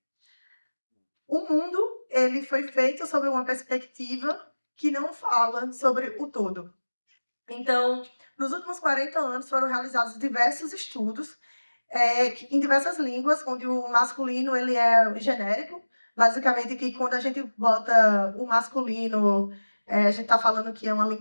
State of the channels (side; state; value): both; inverted; correlation -1.00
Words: o mundo ele foi feito sobre uma perspectiva que não fala sobre o todo. Então, nos últimos 40 anos foram realizados diversos estudos em diversas línguas, onde o masculino ele é genérico, basicamente que quando a gente bota o masculino, a gente está falando que é uma